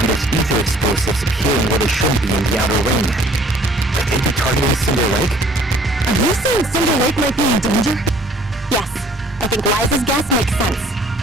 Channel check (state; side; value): normal; both; correlation 0.55